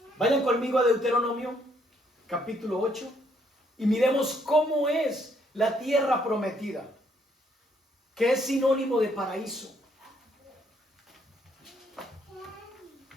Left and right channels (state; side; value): normal; both; correlation 0.69